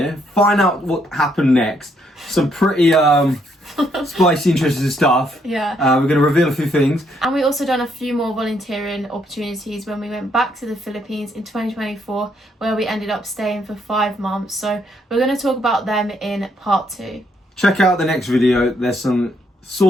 find out what happened next. Some pretty spicy, interesting stuff. Yeah. We're going to reveal a few things. And we also done a few more volunteering opportunities when we went back to the Philippines in 2024, where we ended up staying for 5 months. So we're going to talk about them in part 2. Check out the next video. There's some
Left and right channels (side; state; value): both; normal; correlation 0.72